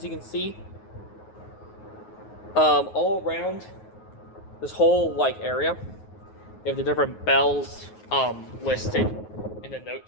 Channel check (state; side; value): late; right; 9.4 ms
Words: you can see, all around this whole area, they have the different bells listed in the